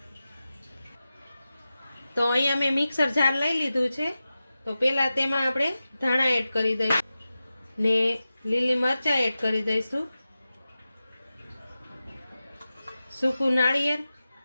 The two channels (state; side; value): inverted; both; correlation -0.94